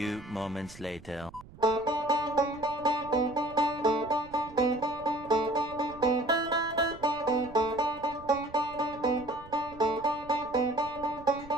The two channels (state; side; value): noise; right; rumble, 19 dB below the sound